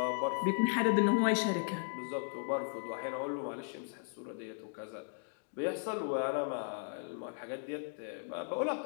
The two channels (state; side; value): silent; right; digital silence